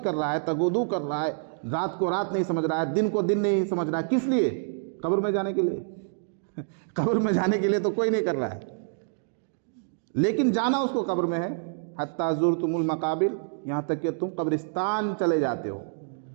کر رہا ہے، تگودو کر رہا ہے، رات کو رات نہیں سمجھ رہا ہے، دن کو دن نہیں سمجھ رہا ہے، کس لیے؟ قبر میں جانے کے لیے۔ قبر میں جانے کے لیے تو کوئی نہیں کر رہا ہے، لیکن جانا اس کو قبر میں ہے۔ حتیٰ زرتم المقابر، یہاں تک کہ تم قبرستان چلے جاتے ہو۔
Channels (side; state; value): left; silent; digital silence